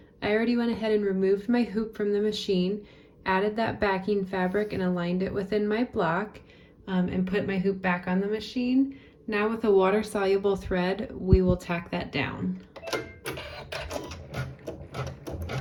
I already went ahead and removed my hoop from the machine, added that backing fabric and aligned it within my block, and put my hoop back on the machine. Now with a water-soluble thread, we will tack that down.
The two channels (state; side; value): identical; both; correlation 1.00